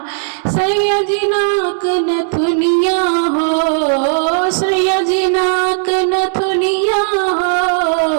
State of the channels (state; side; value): silent; left; digital silence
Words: सैयदी नाक नथुनिया हो, सैयदी नाक नथुनिया